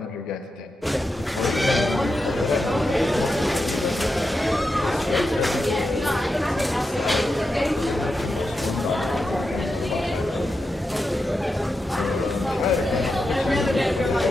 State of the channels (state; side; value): normal; both; correlation 0.88